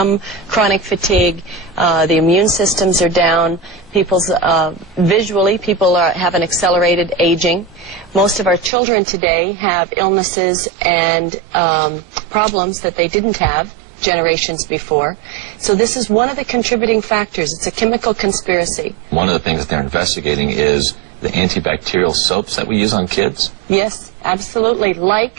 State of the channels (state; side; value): drops out; left; at 8.7 s